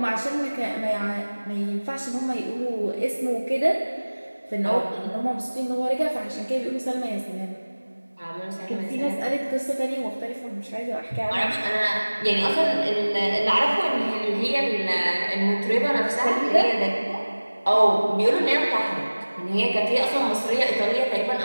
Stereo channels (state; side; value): inverted; both; correlation -1.00